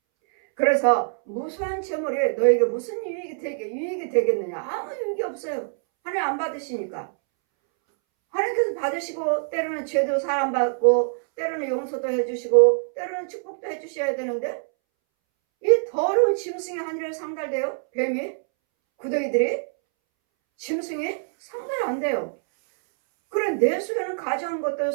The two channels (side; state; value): left; silent; 62 dB below the other